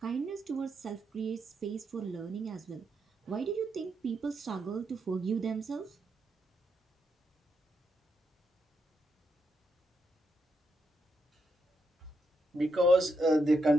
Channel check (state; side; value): normal; both; correlation 0.81